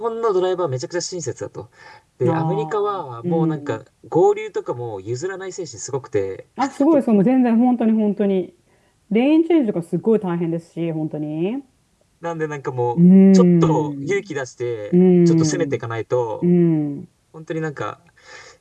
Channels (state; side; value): identical; both; correlation 1.00